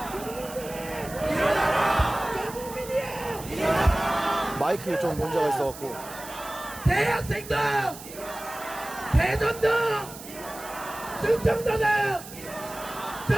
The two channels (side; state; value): right; noise; hiss, 15 dB below the sound